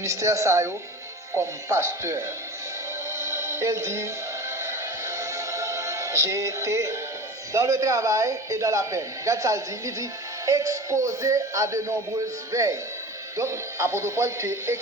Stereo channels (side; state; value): both; normal; correlation 0.34